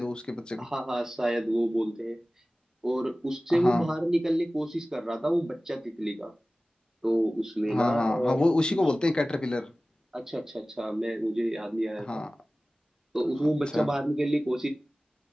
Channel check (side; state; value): both; normal; correlation 0.97